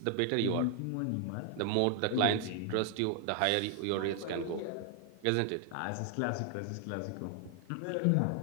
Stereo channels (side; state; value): both; different; correlation 0.00